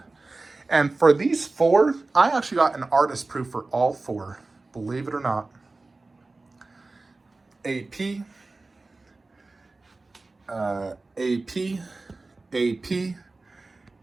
And for these four, I actually got an artist proof for all four, believe it or not. AP, AP, AP,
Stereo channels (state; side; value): quieter; left; 3.4 dB